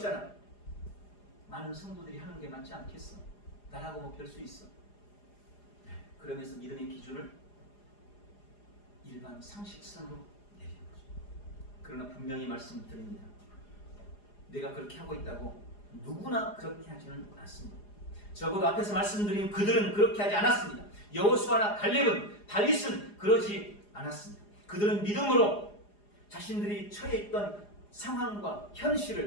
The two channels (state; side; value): late; right; 4.9 ms